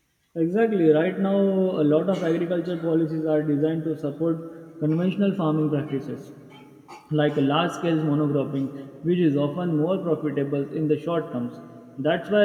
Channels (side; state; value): both; identical; correlation 1.00